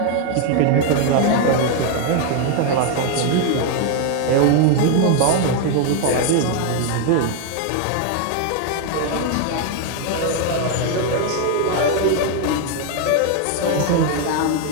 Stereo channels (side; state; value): both; different; correlation 0.01